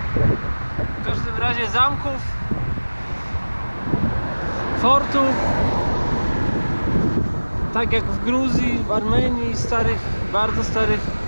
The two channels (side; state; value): both; inverted; correlation -1.00